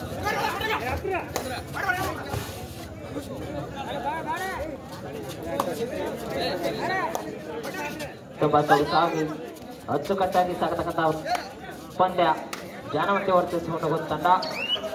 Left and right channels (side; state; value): both; identical; correlation 1.00